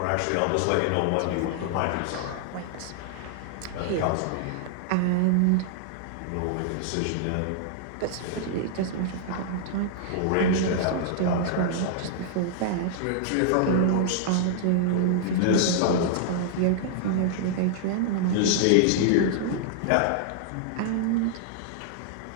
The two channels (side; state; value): both; different; correlation -0.01